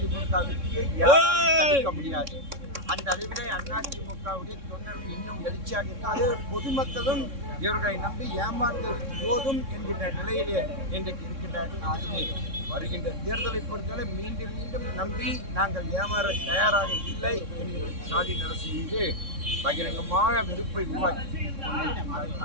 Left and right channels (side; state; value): left; late; 3.6 ms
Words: யாரும் தடுக்க முடியாது. அந்த அளவிலே அதிமுகவுடைய தொண்டர்கள் இன்னும் எழுச்சியாக இருக்கு. அது பொதுமக்களும் இவர்களை நம்பி ஏமாந்தது போதும் என்கின்ற நிலையிலே இன்றைக்கு இருக்கின்றார்கள். ஆகவே வருகின்ற தேர்தலை பொறுத்தவரை மீண்டும் மீண்டும் நம்பி நாங்கள் ஏமாற தயாராக இல்லை என்கிற ஸ்டாலின் அரசு மீது பகிரங்கமான வெறுப்பை உருவாக்கி